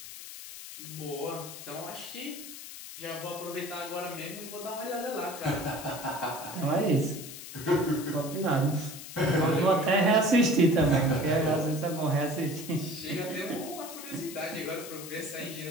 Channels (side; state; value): left; noise; hiss, 12 dB below the sound